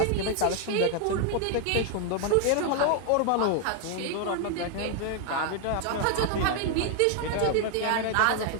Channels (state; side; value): different; both; correlation 0.00